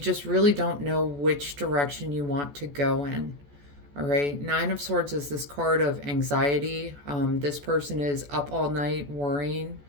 really don't know which direction you want to go in. All right. Nine of Swords is this card of anxiety. This person is up all night worrying.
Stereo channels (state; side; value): late; left; 14 ms